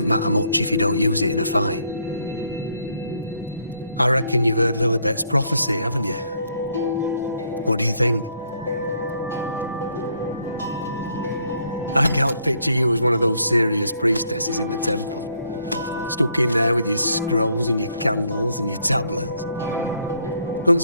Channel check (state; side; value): inverted; both; correlation -0.70